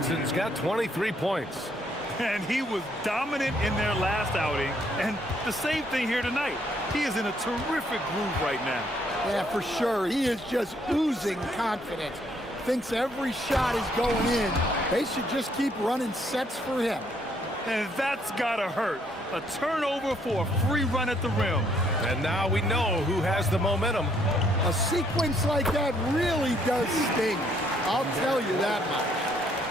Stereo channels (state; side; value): normal; both; correlation 0.69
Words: got 23 points. And he was dominant in their last outing. And the same thing here tonight. He is in a terrific groove right now. Yeah, for sure. He is just oozing confidence. Thinks every shot is going in, They should just keep running sets for him. And that's gotta hurt. A turnover for a free run at the rim. And now we know who has the momentum. A sequence like that really does sting. I'll tell you that